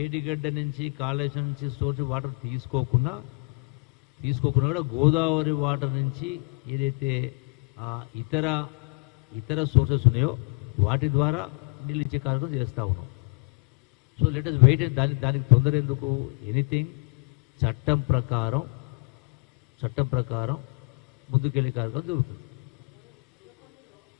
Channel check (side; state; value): right; quieter; 32.1 dB